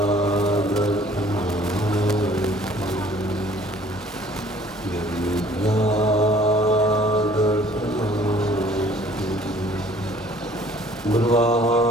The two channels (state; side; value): normal; both; correlation 0.55